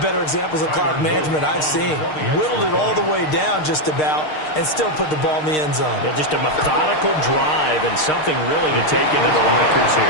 better examples of clock management I've seen. Whittled it all the way down just about and still put the ball in the end zone. Yeah, just a methodical drive and something really to take into the lockers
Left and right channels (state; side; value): late; right; 6.5 ms